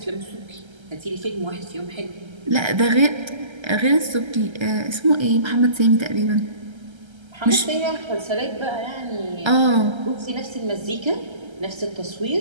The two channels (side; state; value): left; late; 1.3 ms